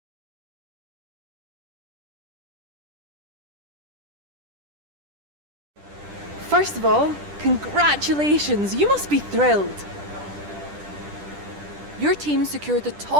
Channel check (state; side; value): late; left; 10 ms